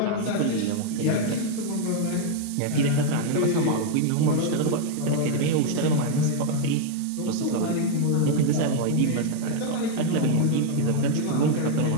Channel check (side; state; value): both; different; correlation 0.00